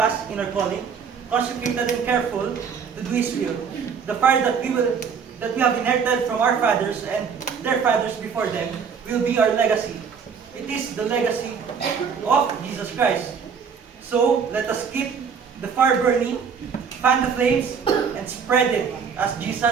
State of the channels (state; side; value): quieter; left; 6.4 dB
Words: in our calling, consecrated and careful to do His will. The fire that we have inherited from our fathers and their fathers before them will be our legacy. It is the legacy of Jesus Christ. So, let us keep the fire burning, fan the flames, and spread it as